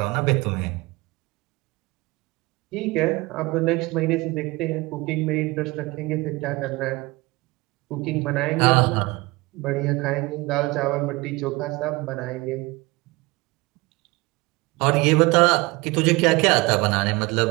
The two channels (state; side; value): quieter; left; 23.1 dB